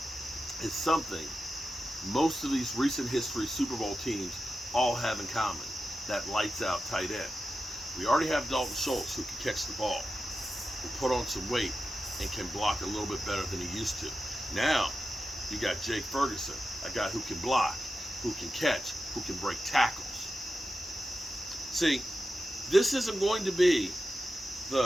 is something most of these recent history Super Bowl teams all have in common, that lights out tight end. We already have Dalton Schultz, who can catch the ball, who put on some weight and can block a little bit better than he used to. Now, you got Jake Ferguson, a guy who can block, who can catch, who can break tackles. See, this isn't going to be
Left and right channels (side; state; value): both; normal; correlation 0.91